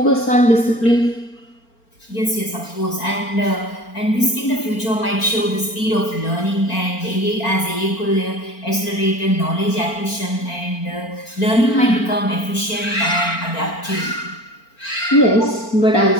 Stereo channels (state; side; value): late; right; 4.4 ms